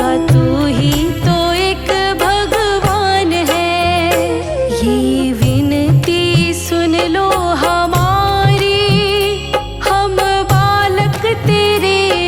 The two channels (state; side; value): identical; both; correlation 1.00